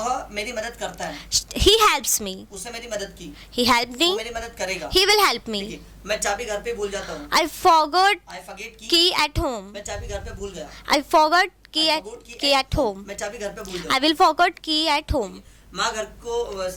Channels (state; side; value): identical; both; correlation 1.00